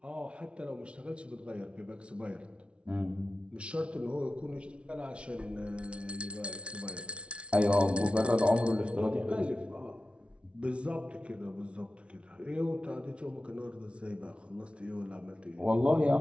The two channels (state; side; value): late; left; 0.060 ms